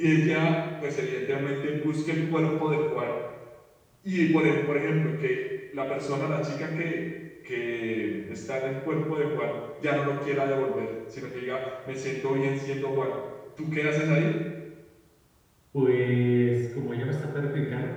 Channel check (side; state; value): both; identical; correlation 1.00